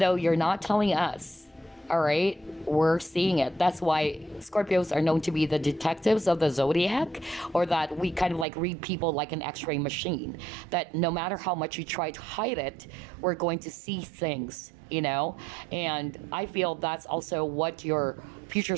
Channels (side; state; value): left; drops out; at 8.5 s